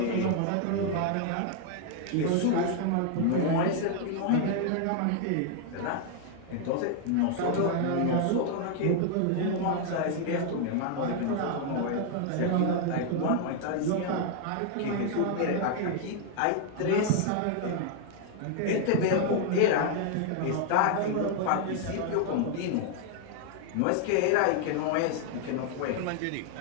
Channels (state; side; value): different; both; correlation 0.00